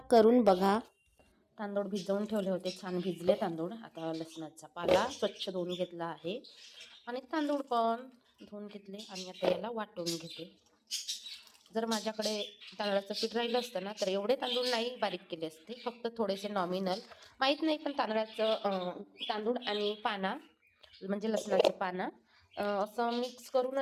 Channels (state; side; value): identical; both; correlation 1.00